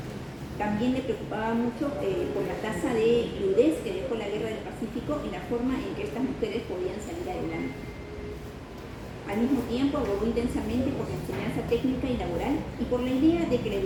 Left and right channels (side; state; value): both; identical; correlation 1.00